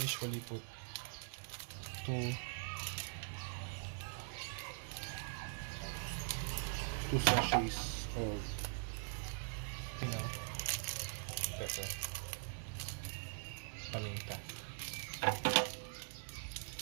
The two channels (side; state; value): left; silent; digital silence